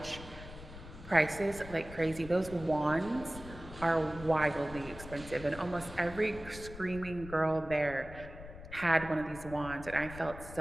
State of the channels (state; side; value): noise; left; rumble, 14 dB below the sound